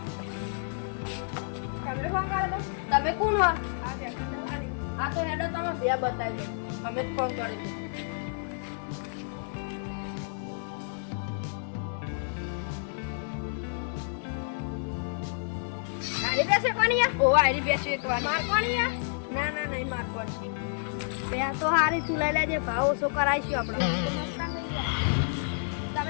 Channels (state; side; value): silent; right; 58 dB below the other